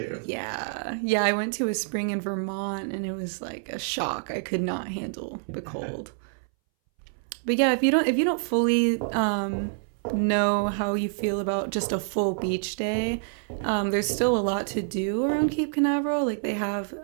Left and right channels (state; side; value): silent; left; 60 dB below the other